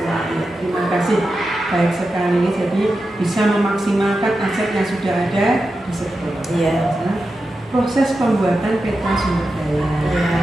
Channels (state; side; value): normal; both; correlation 0.90